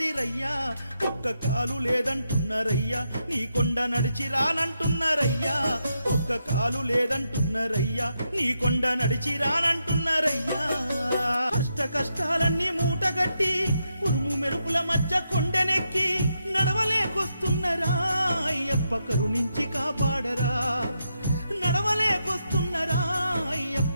రయ్యా ఒక్క కాలు లేదంటున్నారయ్యా నీ కొండ నడిచి రానంటున్నారయ్యా ఒక్క కాలు లేదంటున్నారయ్యా నీ కొండ నడిచి రానంటున్నారయ్యా కష్ట కష్టాలన్నీ మూటగట్టి ఉరుము మెరుపుల మధ్య కొండనెక్కి నడవలేకొస్తున్నారా అయ్యప్ప కరుణించి కాపాడరా నడవలేకొస్తున్నారా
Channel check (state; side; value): inverted; both; correlation -0.82